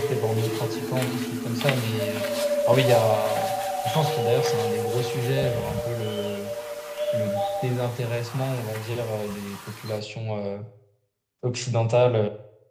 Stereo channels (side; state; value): both; identical; correlation 1.00